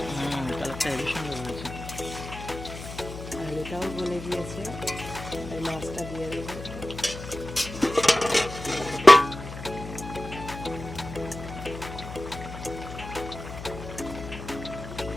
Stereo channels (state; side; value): noise; left; hum, 11 dB below the sound